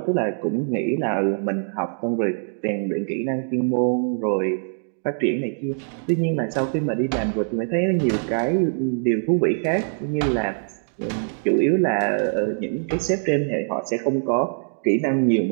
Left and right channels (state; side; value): silent; left; digital silence